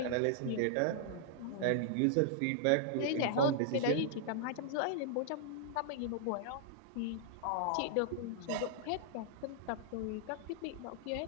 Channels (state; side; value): different; both; correlation -0.01